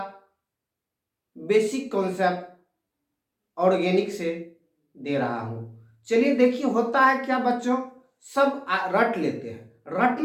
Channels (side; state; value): both; identical; correlation 1.00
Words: बेसिक कॉन्सेप्ट ऑर्गेनिक से दे रहा हूँ। चलिए देखिए, होता है क्या बच्चों, सब रट लेते हैं।